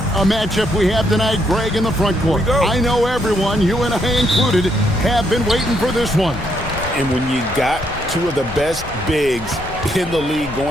a matchup we have tonight, Greg, in the front court. I know everyone, you and I included, have been waiting for this one. And when you got two of the best bigs in the league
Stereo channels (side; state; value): left; noise; rumble, 14 dB below the sound